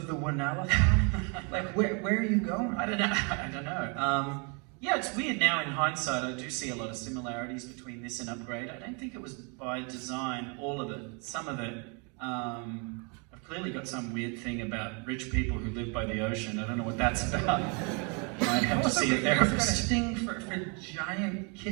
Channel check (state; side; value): quieter; left; 34.7 dB